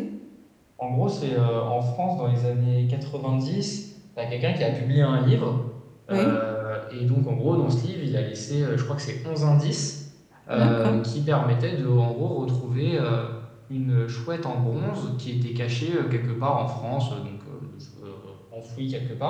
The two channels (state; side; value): identical; both; correlation 1.00